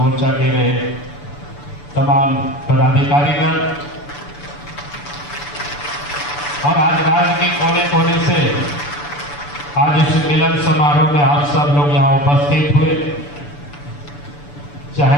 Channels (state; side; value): late; right; 6.9 ms